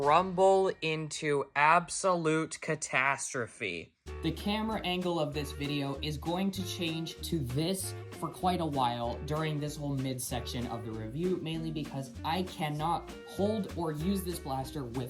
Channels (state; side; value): identical; both; correlation 1.00